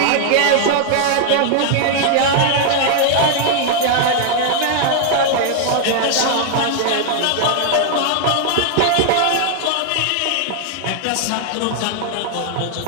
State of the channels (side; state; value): both; different; correlation 0.00